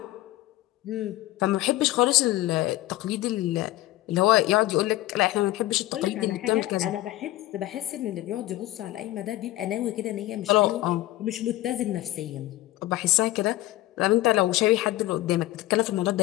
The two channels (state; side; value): quieter; right; 16.8 dB